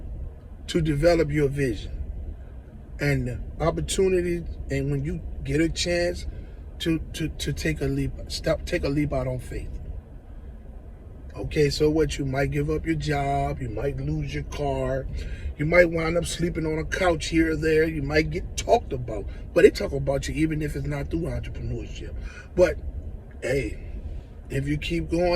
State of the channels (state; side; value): identical; both; correlation 1.00